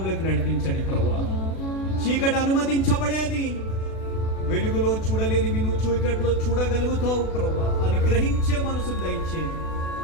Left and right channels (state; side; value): late; right; 36 ms